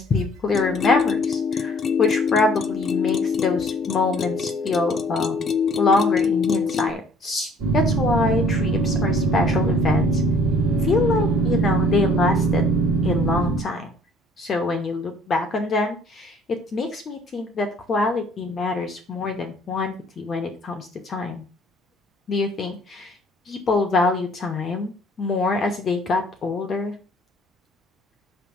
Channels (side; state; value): both; normal; correlation 0.57